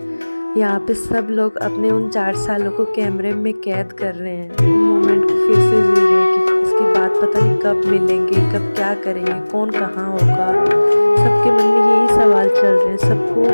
यहाँ पे सब लोग अपने उन 4 सालों को कैमरे में कैद कर रहे हैं, उन मोमेंट को फिर से जी रहे हैं कि इसके बाद पता नहीं कब मिलेंगे, कब क्या करेंगे, कौन कहाँ होगा। सबके मन में यही सवाल चल रहे हैं। सबको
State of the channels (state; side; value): inverted; both; correlation -1.00